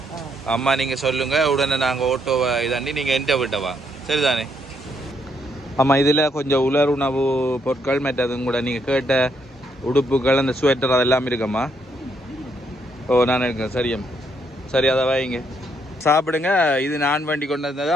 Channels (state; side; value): normal; both; correlation 0.74